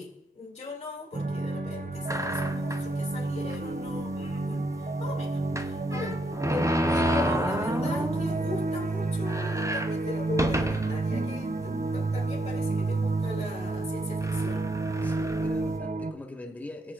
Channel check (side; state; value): both; normal; correlation 0.77